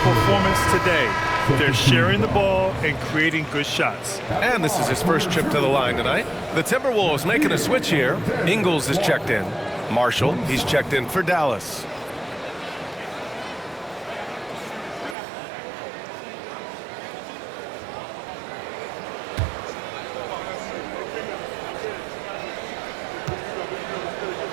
performance today. They're sharing the ball and creating good shots. And this is his first trip to the line tonight. The Timberwolves making a switch here. Ingles is checked in. Marshall, he's checked in for Dallas.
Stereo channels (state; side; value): drops out; left; at 15.2 s